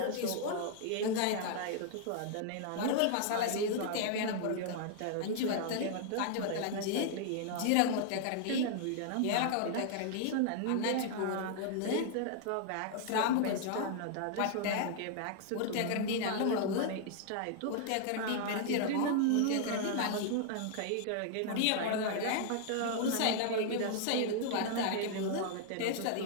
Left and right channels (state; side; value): different; both; correlation -0.01